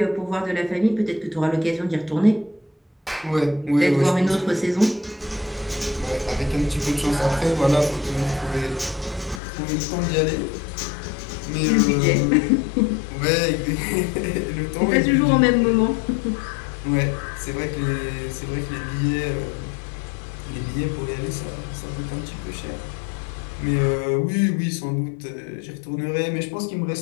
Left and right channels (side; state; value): right; drops out; at 9.4 s